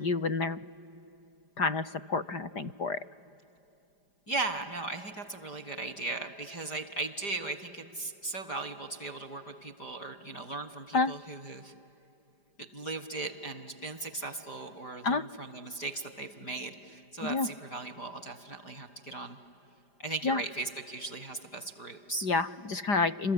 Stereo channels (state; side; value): late; right; 5.0 ms